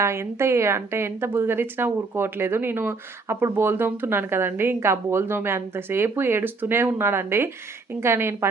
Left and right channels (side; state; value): left; quieter; 4.0 dB